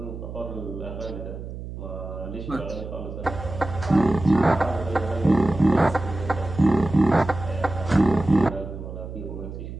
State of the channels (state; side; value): noise; right; hum, 10 dB below the sound